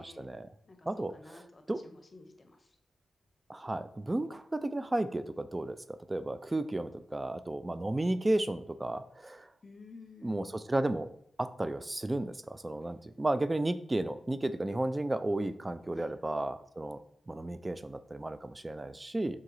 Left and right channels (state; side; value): normal; both; correlation 0.98